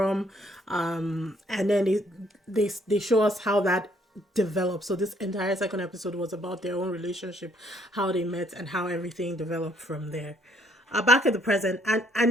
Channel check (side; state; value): both; normal; correlation 0.66